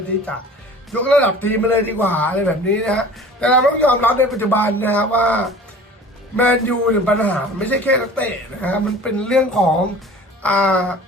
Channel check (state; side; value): normal; both; correlation 0.43